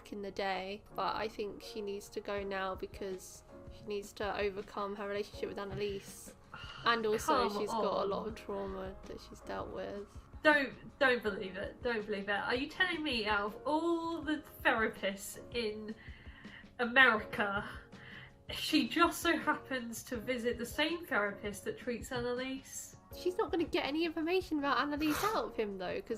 in the day, but I think she needs to go now because she needs to overcome her relationship with Annalise. And also she's got a lot of trauma that she's dealt with. Don't believe it. Don't believe it. Are you telling me out of all the therapists in America, she just so happens to visit the same therapist that treats Annalise? She's not going to get any information about Annalise out of him though, because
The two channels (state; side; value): identical; both; correlation 1.00